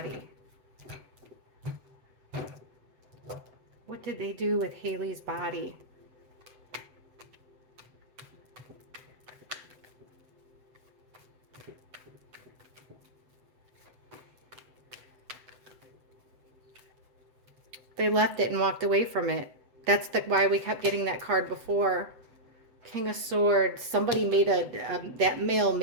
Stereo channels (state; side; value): late; left; 7.9 ms